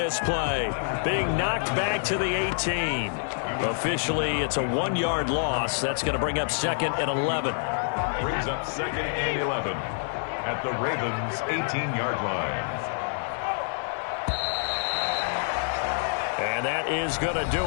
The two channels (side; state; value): right; silent; digital silence